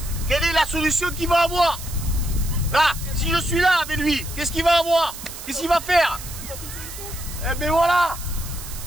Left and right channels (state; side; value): noise; right; hiss, 12 dB below the sound